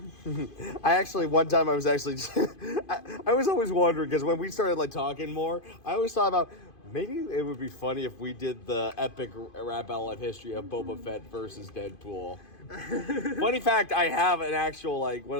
I actually one time I was actually I was always wondering because when we started like talking more, I always thought about. Maybe it would be funny if we did the epic rap battle of history of Boba Fett versus Deadpool. Funny fact, I have an actual, like, one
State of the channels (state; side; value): late; right; 2.5 ms